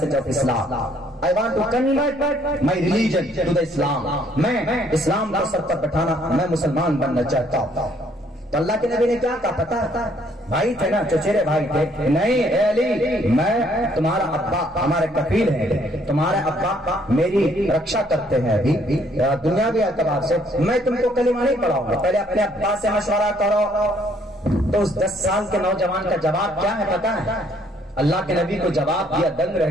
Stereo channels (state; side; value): normal; both; correlation 0.65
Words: of Islam. I want to convert my religion to the Islam. میں اسلام کو سر پر بٹھانا، میں مسلمان بننا چاہتا ہوں. تو اللہ کے نبی نے کیا کہا پتا ہے؟ بھائی تھے نا، چچیرے بھائی تھے. نہیں اے علی، میں تمہارا ابا، ہمارے کفیل ہیں، تمہارے ابا میری رکشا کرتے ہیں ابھی دنیاوی اعتبار سے. میں تم کو کلمہ نہیں پڑھاؤں گا، پہلے اپنے ابا سے مشورہ کرو. تو اس 10 سال کے نوجوان کا جواب کیا ہے پتا ہے؟ اللہ کے نبی کو جواب دیا، دنگ